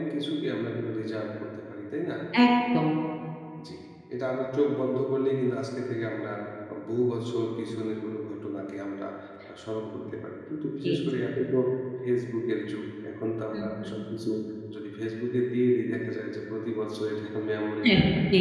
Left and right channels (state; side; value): identical; both; correlation 1.00